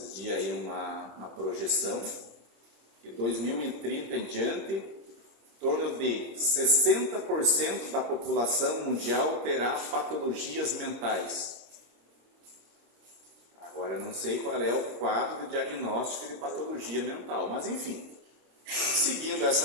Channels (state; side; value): late; left; 26 ms